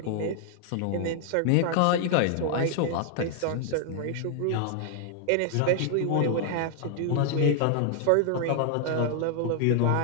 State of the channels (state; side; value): different; both; correlation 0.00